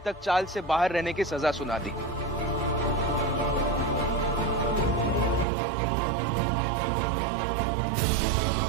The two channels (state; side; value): drops out; left; at 5.5 s